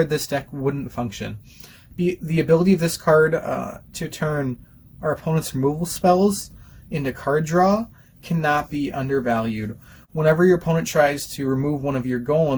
this deck wouldn't function. The ability of this card to turn our opponent's removal spells into card draw cannot be undervalued. Whenever your opponent tries to remove one of your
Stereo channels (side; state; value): both; identical; correlation 1.00